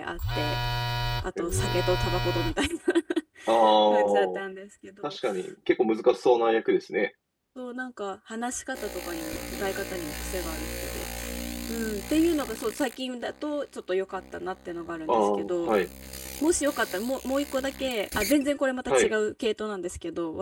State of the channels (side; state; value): both; identical; correlation 1.00